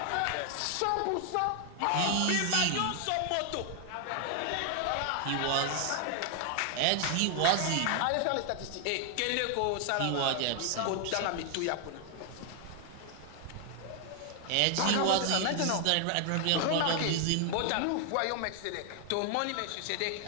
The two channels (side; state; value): both; different; correlation 0.00